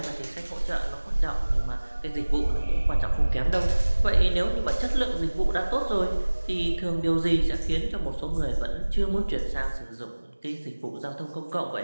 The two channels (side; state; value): both; inverted; correlation -1.00